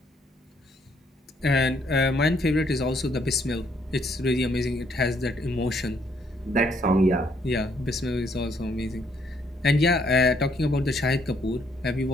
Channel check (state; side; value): normal; both; correlation 0.69